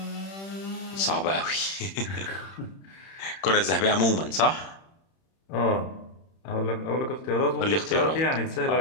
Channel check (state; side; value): late; right; 31 ms